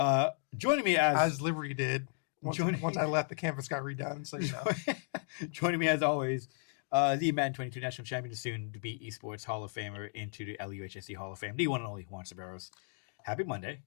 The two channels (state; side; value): silent; right; 55 dB below the other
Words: Joining me as Liberty did. Once I left, the campus got redone. So you know. Joining me as always, the Madden 22 national champion, soon to be esports Hall of Famer into the LUHSC Hall of Fame, the one and only Juan Ceballos. Happy Monday.